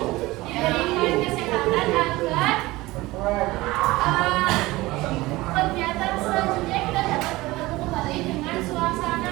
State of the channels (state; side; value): quieter; left; 19.7 dB